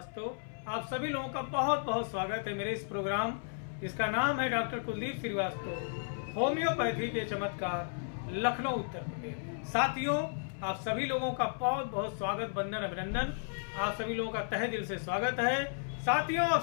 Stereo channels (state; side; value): silent; right; 55 dB below the other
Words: आप सभी लोगों का बहुत बहुत स्वागत है मेरे इस प्रोग्राम जिसका नाम है डॉक्टर कुलदीप श्रीवास्तव होम्योपैथी के चमत्कार लखनऊ उत्तर प्रदेश। साथियों आप सभी लोगों का बहुत बहुत स्वागत, वंदन, अभिनंदन। आप सभी लोगों का तहे दिल से स्वागत है। साथियों